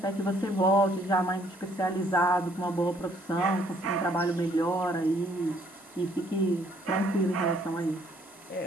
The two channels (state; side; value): normal; both; correlation 0.65